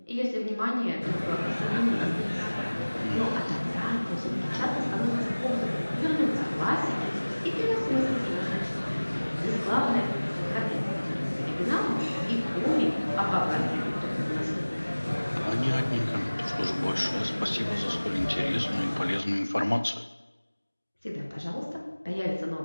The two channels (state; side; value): inverted; both; correlation -1.00